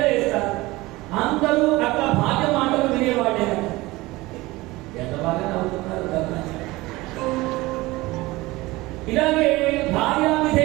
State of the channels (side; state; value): left; quieter; 20.4 dB